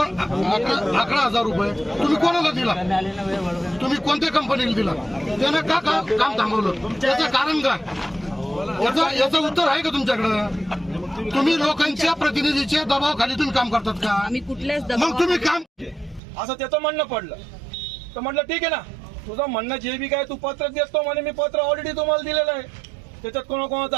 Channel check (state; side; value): drops out; left; at 16.2 s